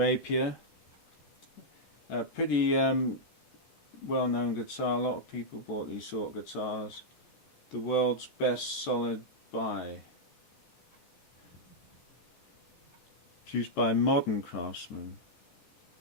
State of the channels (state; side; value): late; right; 13 ms